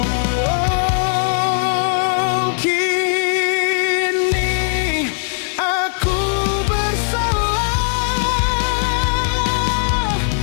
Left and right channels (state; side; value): silent; right; digital silence